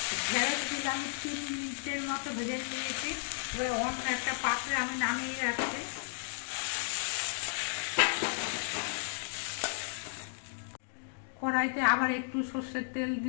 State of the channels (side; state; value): right; silent; digital silence